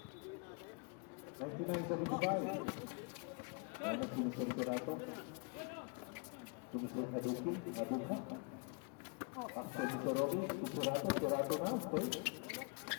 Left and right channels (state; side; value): quieter; right; 33.9 dB